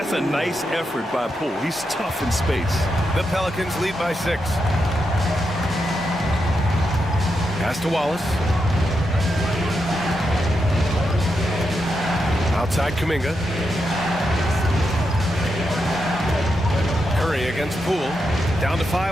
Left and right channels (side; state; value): both; normal; correlation 0.85